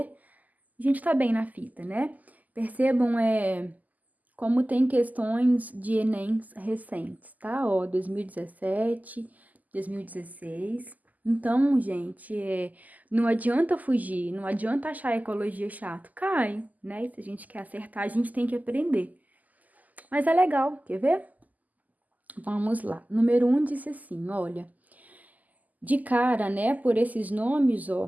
a gente tá bem na fita, né? Percebam, como tem questões de Enem recentes, tá? Ó, 2017, 2016. Então, gente, não adianta fugir, não adianta achar a ecologia chato. Cai, né? E se a gente quer acertar, a gente tem que aprender. Mas é legal, quer ver? Vamos lá. Número 1 disse assim, olha. De cara, né, por esses nomes,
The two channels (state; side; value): late; left; 0.080 ms